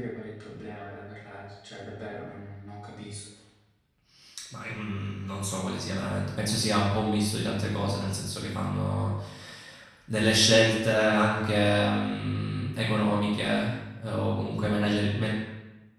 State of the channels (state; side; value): identical; both; correlation 1.00